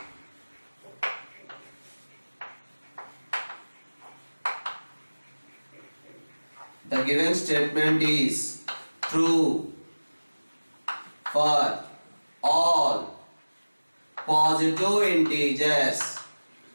given statement is true for all positive integers.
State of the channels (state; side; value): inverted; both; correlation -1.00